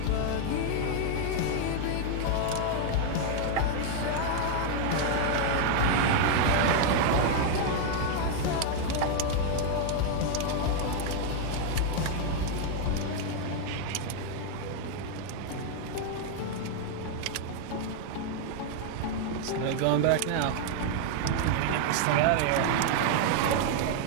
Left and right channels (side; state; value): both; different; correlation 0.00